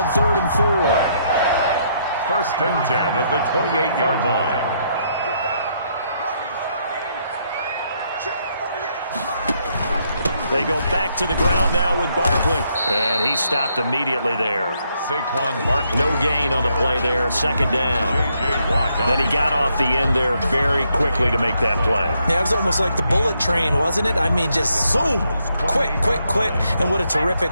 3rd and 4. 1st and 10 at the 28-yard line. They go back to the ground now with Barkley. And he stopped immediately there. Saquon Barkley. No gain on the play there. 2nd down. Then he got off the end there very quickly to make that play. Yeah, it was almost like the bullet train, wasn't it? I mean, just zoom. Quick. And what a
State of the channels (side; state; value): both; inverted; correlation -0.75